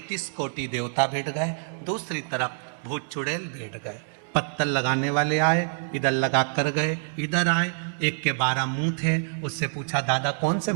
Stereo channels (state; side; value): silent; left; digital silence